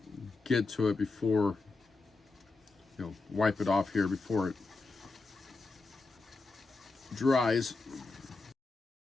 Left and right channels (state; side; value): quieter; right; 3.7 dB